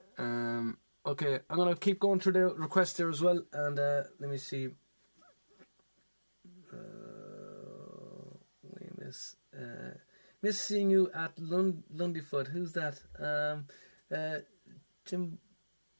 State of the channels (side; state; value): both; inverted; correlation -1.00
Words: Okay, I'm gonna keep going through the requests there as well, and let me see. Miss seeing you at Lundyfoot. Who's that? Jimbo